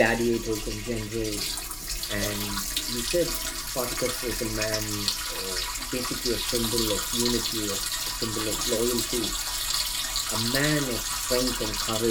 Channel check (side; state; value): both; identical; correlation 1.00